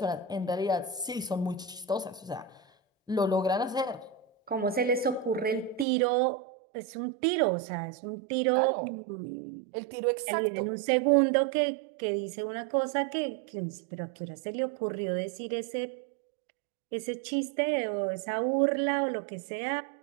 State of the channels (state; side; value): drops out; left; at 5.9 s